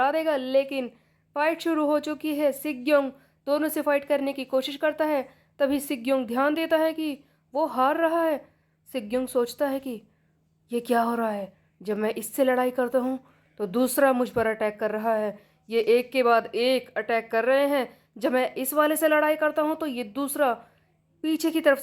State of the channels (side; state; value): both; identical; correlation 1.00